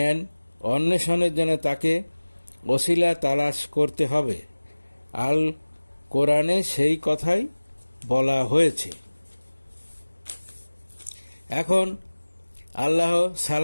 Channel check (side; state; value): both; inverted; correlation -1.00